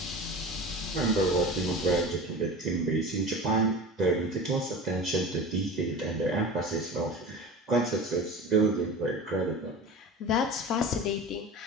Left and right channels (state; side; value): normal; both; correlation 0.34